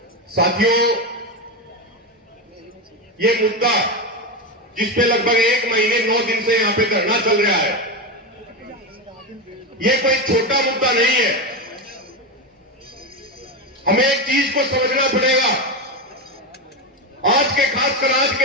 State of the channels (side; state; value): both; normal; correlation 0.14